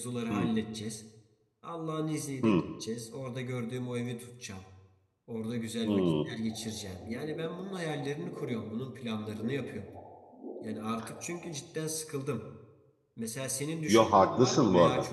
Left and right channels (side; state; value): both; identical; correlation 1.00